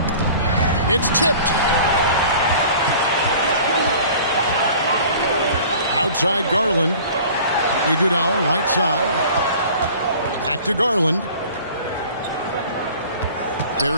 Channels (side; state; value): both; inverted; correlation -0.45